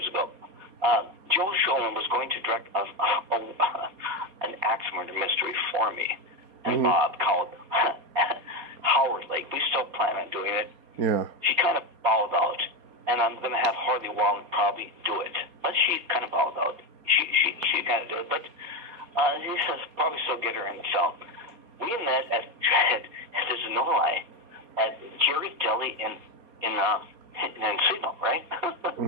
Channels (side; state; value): left; late; 4.2 ms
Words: ago, Joe Schoen was going to direct an axe murder mystery for me. and Bob called Howard Lake. We still plan on doing it. Yeah. She kind of bowed out, and I'm going to have Harley Wong probably do it. But she kind of bowed out. She kind of did it, but he says probably still get her in the film. We met at there's no lie, at Jerry's Deli in Encino, right?